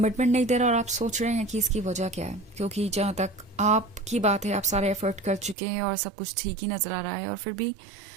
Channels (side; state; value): left; drops out; at 5.6 s